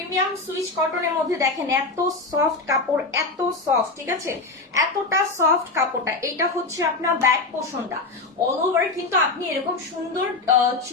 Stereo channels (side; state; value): right; quieter; 3.5 dB